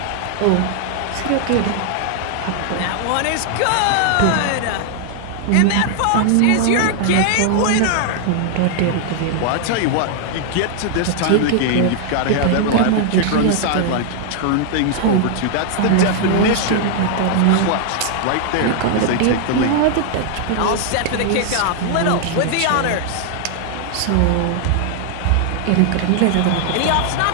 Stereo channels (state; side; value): different; both; correlation 0.00